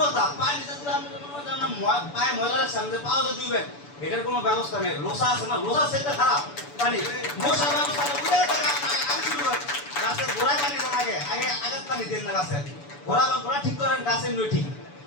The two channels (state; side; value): late; right; 6.9 ms